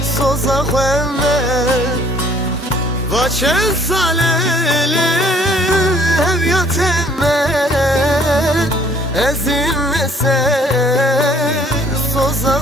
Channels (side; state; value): both; normal; correlation 0.59